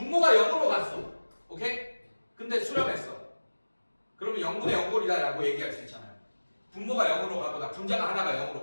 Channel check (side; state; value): both; inverted; correlation -1.00